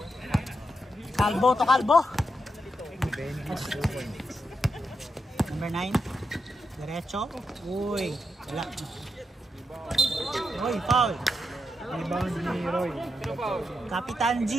Kalbo to Kalbo. Number 9. Diretso. Uy. Wala. Uy, foul. Rebound ni Roy. Kapitan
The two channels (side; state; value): both; normal; correlation 0.85